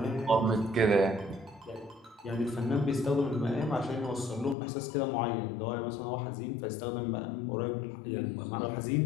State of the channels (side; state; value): right; drops out; at 4.5 s